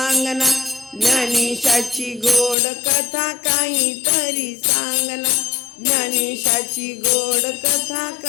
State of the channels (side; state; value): right; drops out; at 2.6 s